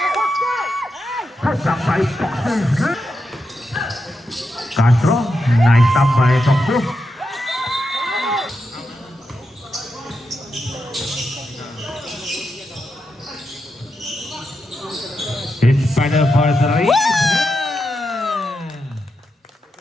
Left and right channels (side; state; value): both; normal; correlation 0.86